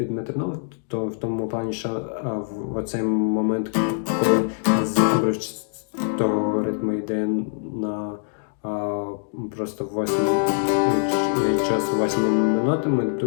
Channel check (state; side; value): silent; right; digital silence